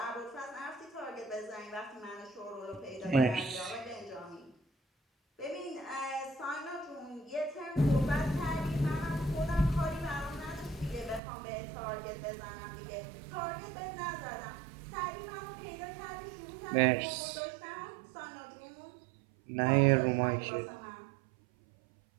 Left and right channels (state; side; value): drops out; left; at 11.2 s